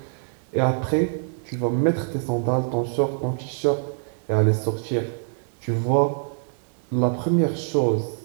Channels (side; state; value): left; silent; digital silence